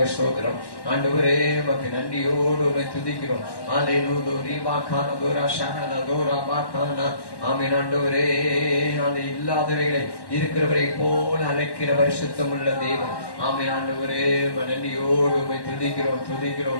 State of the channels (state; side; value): late; right; 1.1 ms